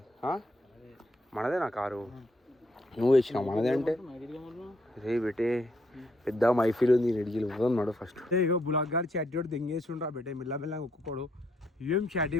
మనదే నా కారు నువ్వు వేసినావు మనదే అంటే రే బెటే పెద్ద మైఫీల్ ఉంది నెడిగిలు ఉన్నాడు ఫస్ట్ ఇగో బులాక్ గారు చాటి కూడా దెంగేస్తుండ్రా బెటే మెల్లగా ఒక్కొక్కడు ఏం చాటి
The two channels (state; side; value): normal; both; correlation 0.74